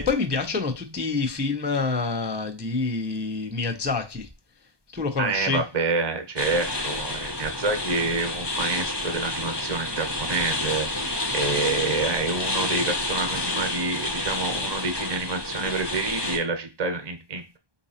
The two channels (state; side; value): late; left; 1.2 ms